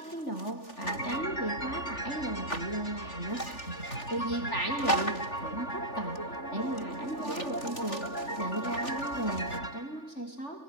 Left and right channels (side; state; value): right; late; 3.4 ms